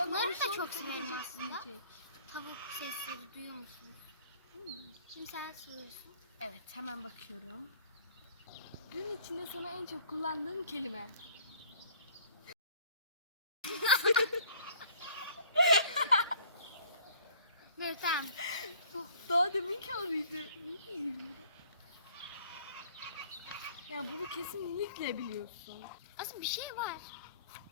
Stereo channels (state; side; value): inverted; both; correlation -0.54